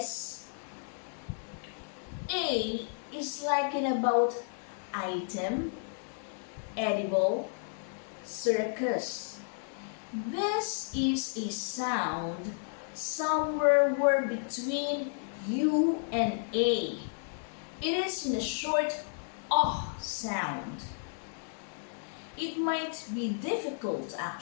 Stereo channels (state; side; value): silent; right; 56 dB below the other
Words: A is like in about item, edible, circus. This is a sound somewhere between U and A. It is in a short sound. It might be difficult